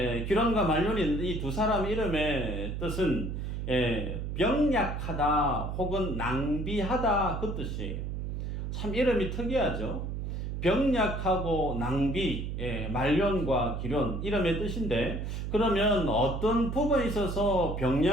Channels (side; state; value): right; noise; hum, 4 dB below the sound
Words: 기론과 말론이 이 두 사람 이름의 뜻은 병약하다 혹은 낭비하다 그 뜻이에요. 참 이름이 특이하죠. 병약하고 낭비, 말론과 기론 이름의 뜻인데, 그러면 어떤 부분에 있어서